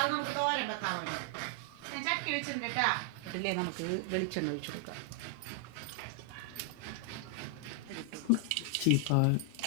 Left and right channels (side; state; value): both; different; correlation 0.00